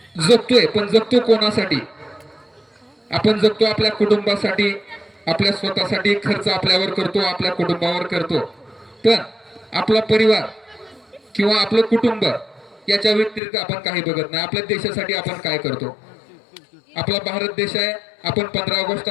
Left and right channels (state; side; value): drops out; right; at 13.4 s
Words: जगतोय, पण जगतो कोणासाठी? आपण जगतो आपल्या कुटुंबासाठी, आपल्या स्वतःसाठी. खर्च आपल्यावर करतो, आपल्या कुटुंबावर करतो. पण आपला परिवार किंवा आपलं कुटुंब याच्या व्यतिरिक्त आपण काही बघत नाही. आपल्या देशासाठी आपण काय करतो? आपला भारत देश आहे. आपण 15 ऑगस्ट